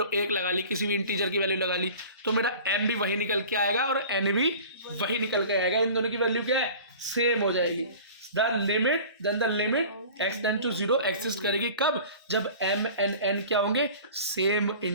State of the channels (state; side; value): inverted; both; correlation -0.42